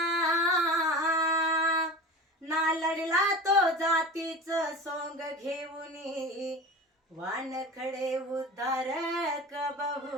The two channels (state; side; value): normal; both; correlation 0.33